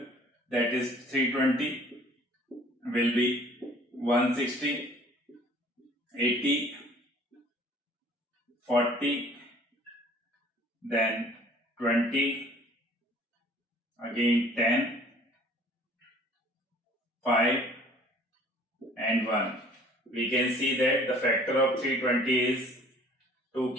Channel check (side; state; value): both; normal; correlation 0.53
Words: that is 320 will be 160, 80, 40, then 20, again 10, 5 and 1. We can see that the factor of 320 is 2